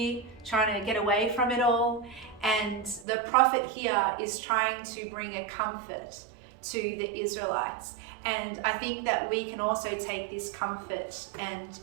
trying to get away from it all. And the prophet here is trying to bring a comfort to the Israelites. And I think that we can also take this comfort and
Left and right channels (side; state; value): left; drops out; at 3.1 s